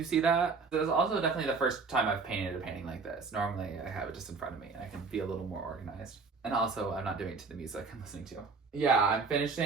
see that? This is also definitely the first time I've painted a painting like this. Normally I have it just in front of me and I can be a little more organized. And also I'm not doing it to the music I'm listening to. Yeah, I'm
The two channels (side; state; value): left; quieter; 4.6 dB